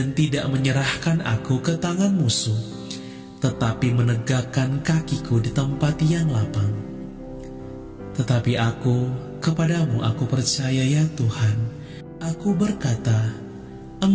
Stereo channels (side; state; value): both; identical; correlation 1.00